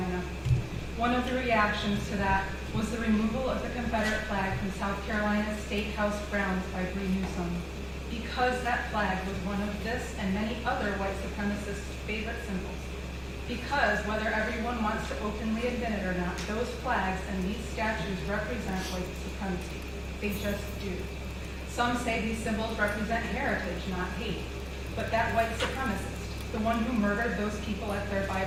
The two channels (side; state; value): both; identical; correlation 1.00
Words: One of the reactions to that was the removal of the Confederate flag from South Carolina's State House grounds by Bree Newsom, because that flag was one of this and many other white supremacists' favorite symbols. Because whether everyone wants to openly admit it or not, those flags and these statues represent white supremacy. They just do. Some say these symbols represent heritage, not hate. But that white supremacist, the one who murdered those people at their